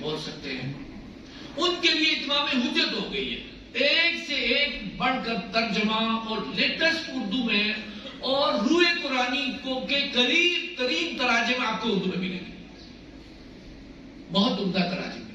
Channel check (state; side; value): identical; both; correlation 1.00